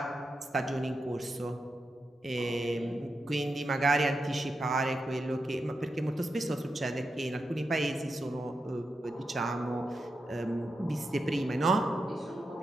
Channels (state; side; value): normal; both; correlation 0.87